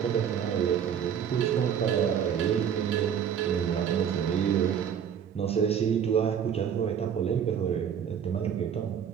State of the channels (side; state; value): left; quieter; 8.3 dB